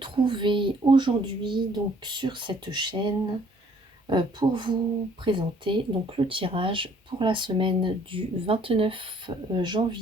aujourd'hui donc sur cette chaîne pour vous présenter donc le tirage pour la semaine du 29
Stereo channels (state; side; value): normal; both; correlation 0.60